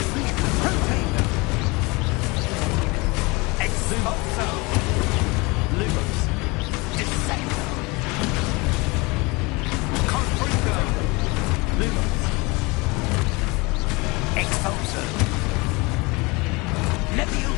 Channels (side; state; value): right; quieter; 25.8 dB